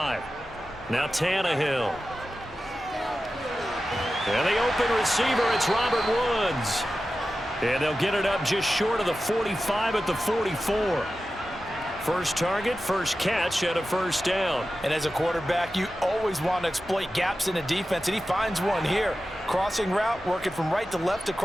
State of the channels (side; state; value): both; normal; correlation 0.93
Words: Now Tannehill. And the open receiver, it's Robert Woods. And they'll get it up just short of the 45 at the 44. First target, first catch, and a 1st down. And as a quarterback, you always want to exploit gaps in a defense, and he finds one here. Crossing route, working from right to left